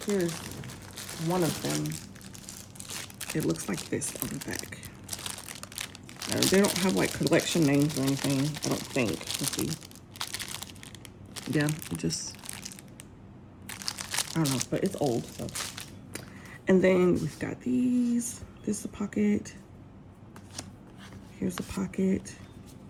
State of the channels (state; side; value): identical; both; correlation 1.00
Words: Here's one of them. It looks like this on the back. They don't have like collection names or anything, I don't think. Let's see. Yeah, it just, I don't know, but it's old, so. And then we've got these. This is a pocket. Here's a pocket.